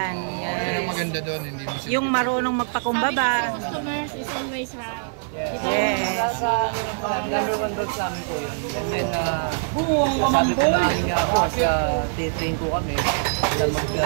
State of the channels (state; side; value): silent; left; digital silence